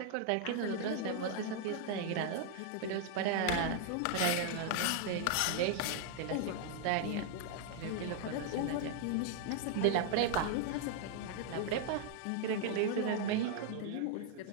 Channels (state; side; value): different; both; correlation 0.00